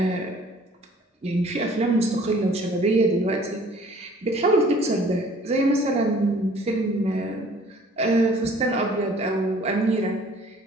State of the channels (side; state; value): both; normal; correlation 0.53